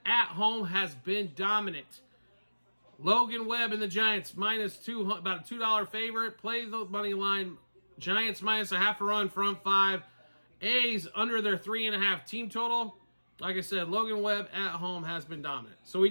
at home has been dominant. Logan Webb and the Giants -2, about a $2 favorite. Play the money line. Giants -0.5 run, front 5. A's under their 3.5 team total. Like I said, Logan Webb at home has been dominant. So we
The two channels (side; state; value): both; inverted; correlation -1.00